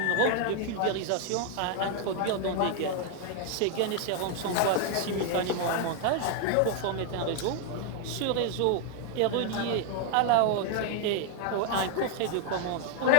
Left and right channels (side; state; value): both; different; correlation 0.00